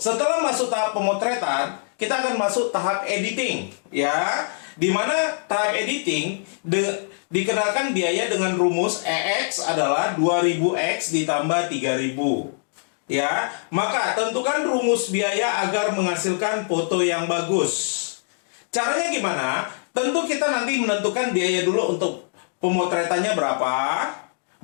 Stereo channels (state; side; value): silent; right; digital silence